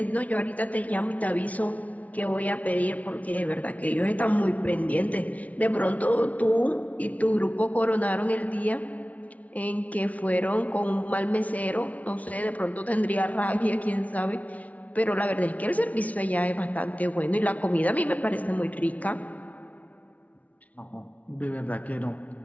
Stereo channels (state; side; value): late; right; 0.070 ms